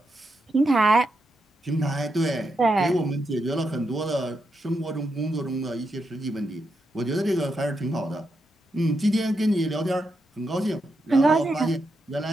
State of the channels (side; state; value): both; normal; correlation 0.84